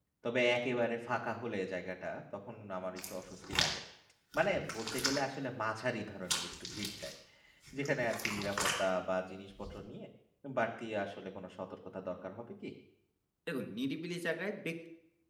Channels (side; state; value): both; identical; correlation 1.00